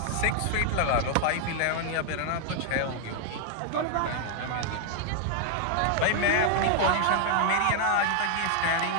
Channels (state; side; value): different; both; correlation 0.00